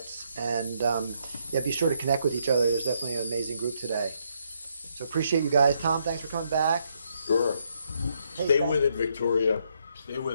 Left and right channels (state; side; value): inverted; both; correlation -0.74